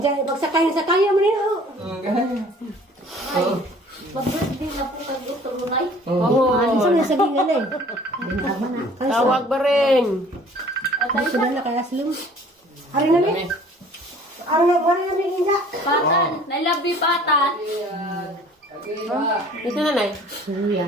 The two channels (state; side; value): normal; both; correlation 0.52